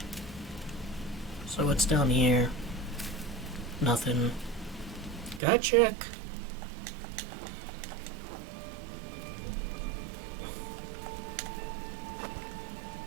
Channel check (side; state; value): left; drops out; at 5.4 s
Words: So what's down here? Nothing. Gotta check.